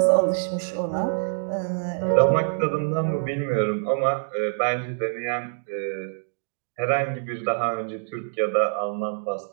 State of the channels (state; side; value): silent; left; digital silence